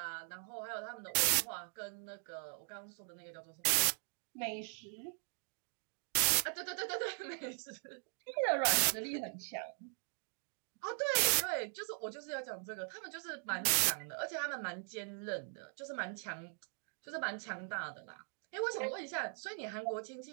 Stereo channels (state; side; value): silent; left; 51 dB below the other